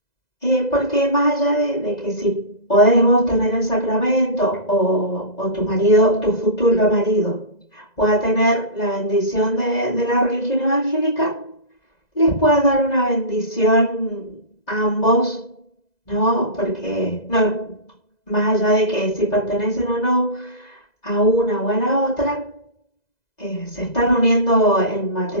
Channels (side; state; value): right; late; 2.0 ms